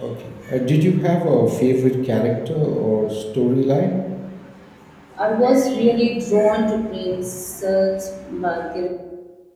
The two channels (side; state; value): both; identical; correlation 1.00